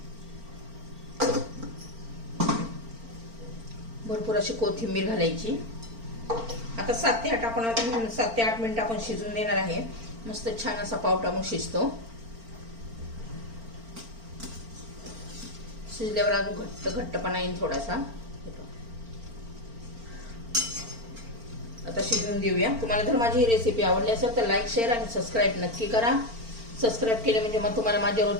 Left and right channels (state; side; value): late; left; 4.4 ms